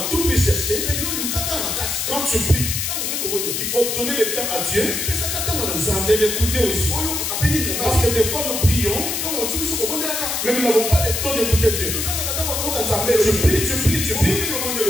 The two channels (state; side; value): noise; left; hiss, 1 dB below the sound